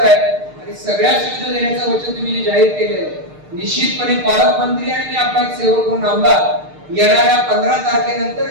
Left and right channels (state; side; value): late; left; 6.6 ms